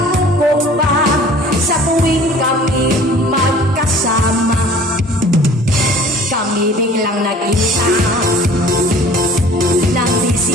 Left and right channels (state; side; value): normal; both; correlation 0.48